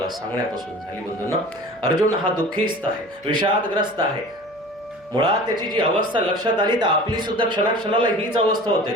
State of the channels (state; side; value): noise; right; hum, 28 dB below the sound